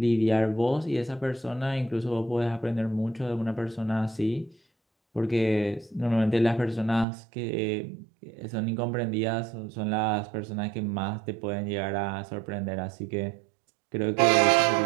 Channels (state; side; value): drops out; left; at 7.1 s